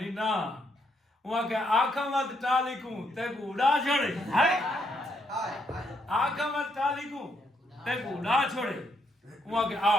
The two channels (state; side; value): normal; both; correlation 0.76